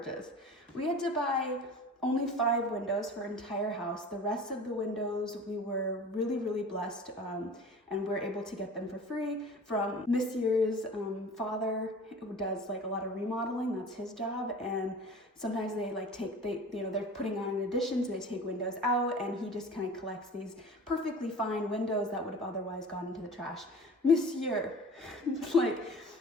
We had to buy only 5 windows for our entire house. The rest of the windows, we were really, really blessed, and we're able to get them for free from Monsieur's father, who does like a lot of remodeling. That's his job. And sometimes they like they're putting on an addition, so they take windows out, and he just kind of collects these perfectly fine windows that would have otherwise gone into the trash. Monsieur, like,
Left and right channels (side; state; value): both; normal; correlation 0.40